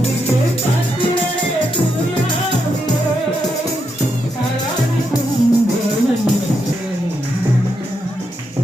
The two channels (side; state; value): both; normal; correlation 0.82